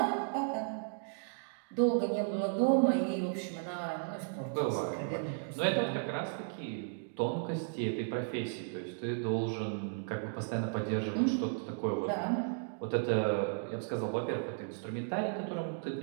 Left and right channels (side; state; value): left; silent; digital silence